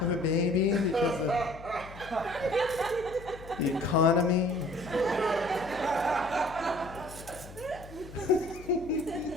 a baby because of the economy?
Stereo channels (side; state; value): left; noise; hum, 17 dB below the sound